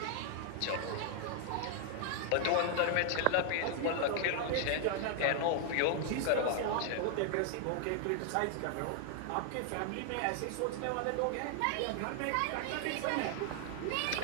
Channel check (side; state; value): both; different; correlation 0.00